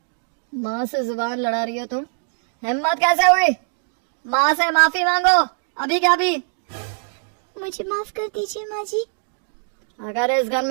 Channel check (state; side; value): silent; left; digital silence